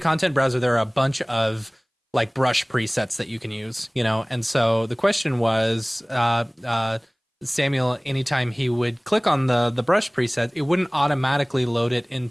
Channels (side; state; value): both; identical; correlation 1.00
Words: content browser, there are a bunch of like brush presets that you can use, and so the question was, Samuel, anytime he would click on the brush preset, it wouldn't automatically load it